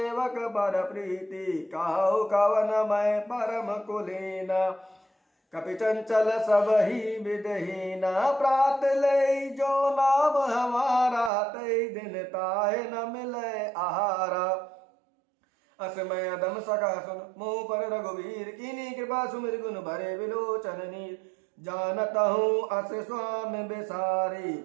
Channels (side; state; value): left; drops out; at 11.3 s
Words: बर प्रीति। कहु कवन मैं परम कुलीना, कपि चंचल सब ही विदहीना। प्रात ले जो नाम हमारा, तई दिन ताहे न मिले आहारा। असमय अदम सका सुन मोह पर रघुवीर, कीनी कृपा सुमिर गुण भरे विलोचन नीर। जानत हूँ अस स्वामी बिसारी,